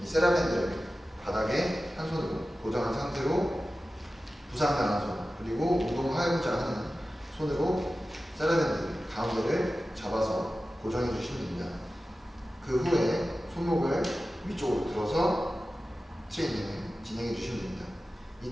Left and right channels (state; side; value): normal; both; correlation 0.95